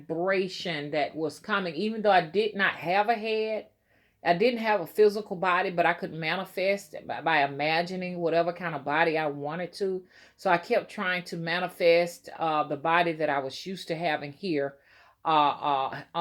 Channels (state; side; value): identical; both; correlation 1.00